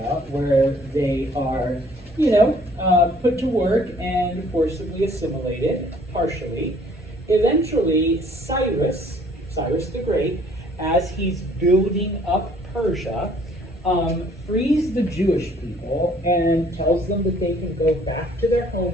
where they are, put to work and forcibly assimilated, partially. Eventually, Cyrus the Great, as he's building up Persia, frees the Jewish people and tells them that they can go back to their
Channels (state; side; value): normal; both; correlation 0.58